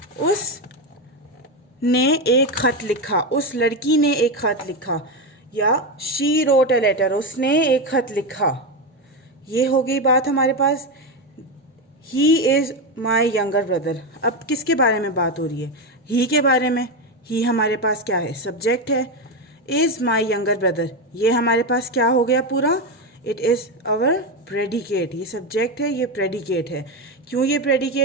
उसने एक खत लिखा, या शी रोट अ लेटर, उसने एक खत लिखा. ये हो गई बात हमारे पास. He is my younger brother. अब किसके बारे में बात हो रही है? ही के बारे में. ही हमारे पास क्या है? सब्जेक्ट है. इज माई यंगर ब्रदर, ये हमारे पास क्या हो गया पूरा? It is our predicate. ये सब्जेक्ट है, ये प्रेडिकेट है. क्यों ये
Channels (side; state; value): both; normal; correlation 0.12